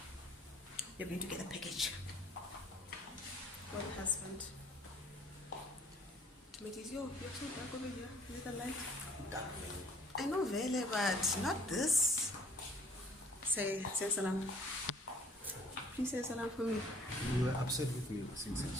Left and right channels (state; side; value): normal; both; correlation 0.56